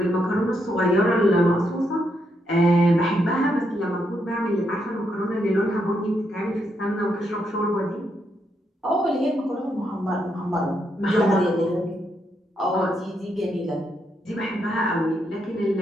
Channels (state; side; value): normal; both; correlation 0.79